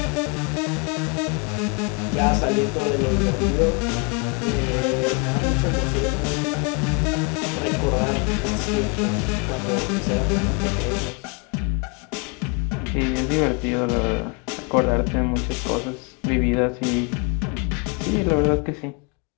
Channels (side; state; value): right; quieter; 33.7 dB